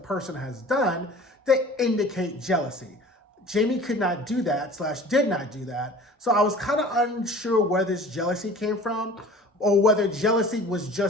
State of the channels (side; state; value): both; normal; correlation 0.44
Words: has done that indicate jealousy. Jamie could not do that, / did not do that, so I was kind of unsure where this jealousy came from, or whether jealousy was